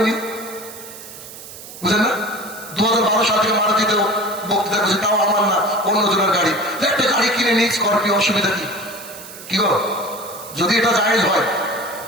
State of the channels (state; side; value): noise; right; hiss, 15 dB below the sound